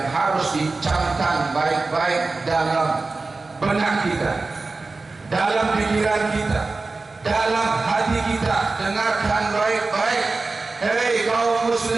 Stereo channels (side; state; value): left; quieter; 3.7 dB